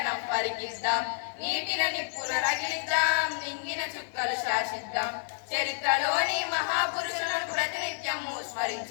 పరికిద్దాం నీటిన నిప్పుల రగిలిద్దాం నింగిన చుక్కలు శాసిద్దాం చరిత్రలోని మహాపురుషులను ప్రతినిత్యము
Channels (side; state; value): right; silent; 58 dB below the other